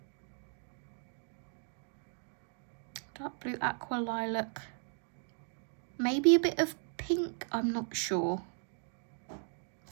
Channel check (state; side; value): silent; left; 53 dB below the other